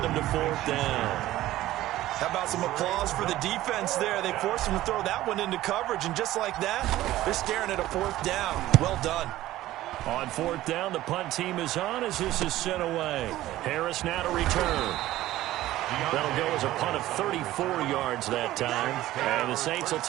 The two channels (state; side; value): quieter; left; 15.2 dB